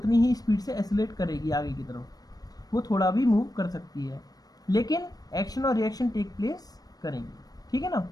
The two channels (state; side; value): late; right; 0.19 ms